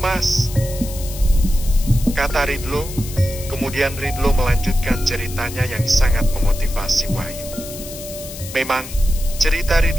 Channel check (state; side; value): noise; left; hiss, 12 dB below the sound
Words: kata Ridlo. Kemudian Ridlo melanjutkan ceritanya yang sangat memotivasi Wahyu. Memang, cerita